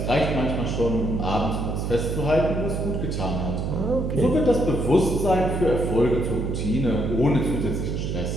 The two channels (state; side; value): noise; right; hum, 2 dB below the sound